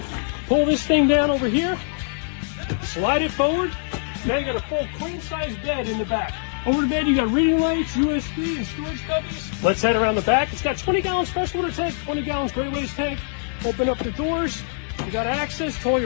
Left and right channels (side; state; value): right; silent; digital silence